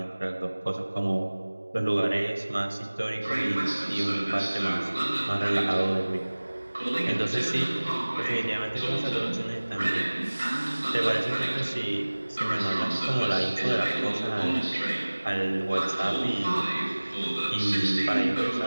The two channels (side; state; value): both; inverted; correlation -1.00